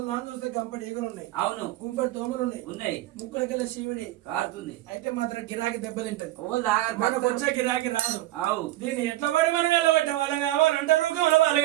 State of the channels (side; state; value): left; quieter; 16.0 dB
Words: చూస్తే గంపడి ఈగలు ఉన్నాయి, అవును, కుంపడి దోమలు ఉన్నాయి, ముక్కులకెళ్ళ శివుడి కారుతుంది. అయితే మాత్రం గిరాకి దెబ్బతింటది, మనకు వచ్చే గిరాకి రాదు. దీన్ని ఎట్లా పడి మనం వెళ్ళబెట్టే వాళ్ళం కావాలంటే రూకం వాళ్ళు